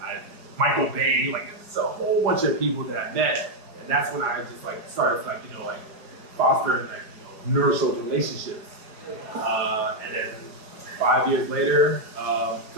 Michael Bay, it's a whole bunch of people that I met, and that's when I just started fostering nourishing relationships. And then 5 years later,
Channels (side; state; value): left; late; 4.8 ms